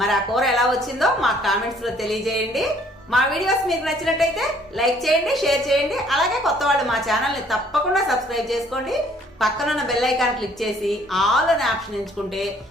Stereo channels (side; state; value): both; normal; correlation 0.60